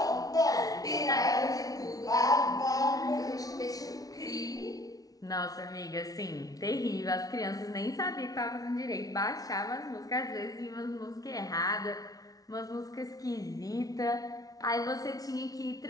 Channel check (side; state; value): right; late; 0.18 ms